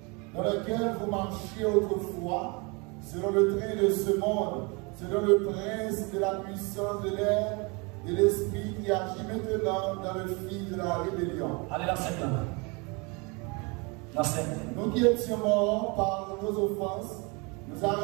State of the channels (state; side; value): quieter; left; 29.7 dB